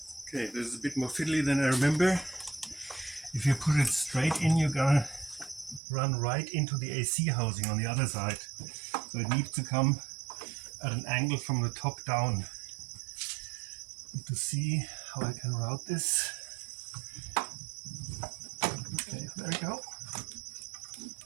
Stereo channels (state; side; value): drops out; left; at 5.8 s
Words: Okay, this is a bit more fiddly than I remember. If you put it straight in, you're gonna run right into the AC housing on the other side. So it needs to come at an angle from the top down. To see how I can route this. Okay, there we go.